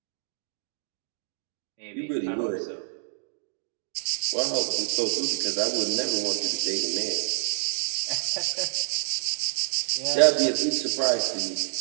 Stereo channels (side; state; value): left; silent; digital silence